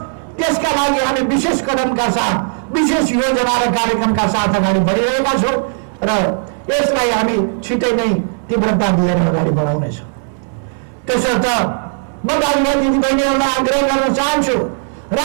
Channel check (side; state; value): left; silent; digital silence